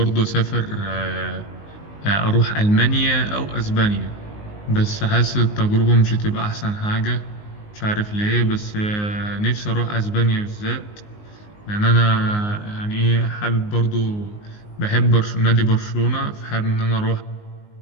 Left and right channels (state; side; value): late; right; 19 ms